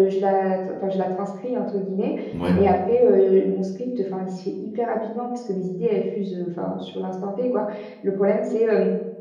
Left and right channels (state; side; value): identical; both; correlation 1.00